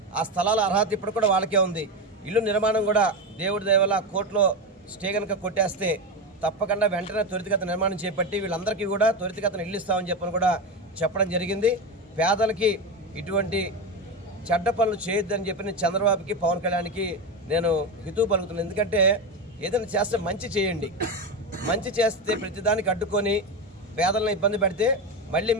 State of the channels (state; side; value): normal; both; correlation 0.17